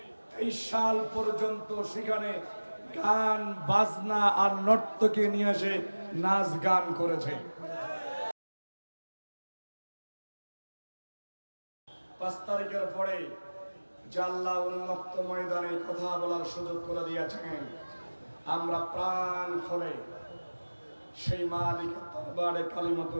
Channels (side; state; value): both; inverted; correlation -1.00